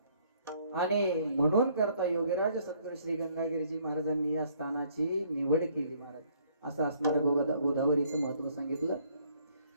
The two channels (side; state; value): both; inverted; correlation -0.64